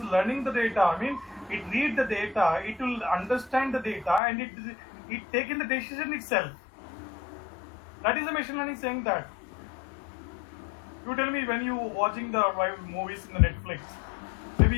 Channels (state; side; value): drops out; right; at 4.2 s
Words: learning the data. I mean, it read the data, it will understand the data, and it take in the decision itself. That is the machine learning saying that. You tell me, when you watching the movies in the Netflix,